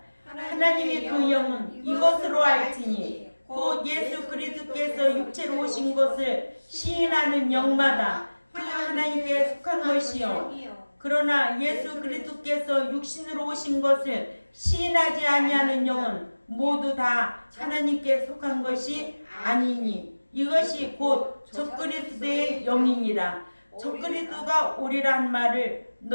하나님의 그 영은 이것으로 알지니 곧 예수 그리스도께서 육체로 오신 것을 시인하는 영마다 그 하나님께 속한 것이요 그러나 예수 그리스도께서 육신으로 오신 것을 시인하지 아니하는 영은 모두 다 하나님께 속한 것이 아니니 이것이 곧 적그리스도의 영이니라. 적그리스도가 오리란 말을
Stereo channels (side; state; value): both; inverted; correlation -1.00